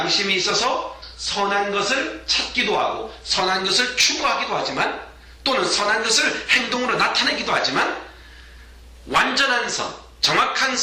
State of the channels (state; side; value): identical; both; correlation 1.00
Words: 있어서 선한 것을 찾기도 하고 선한 것을 추구하기도 하지만 또는 선한 것을 행동으로 나타내기도 하지만 완전한 선, 정확한